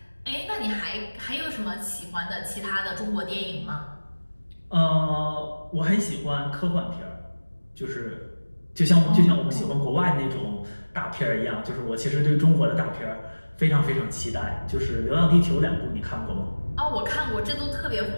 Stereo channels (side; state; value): both; inverted; correlation -1.00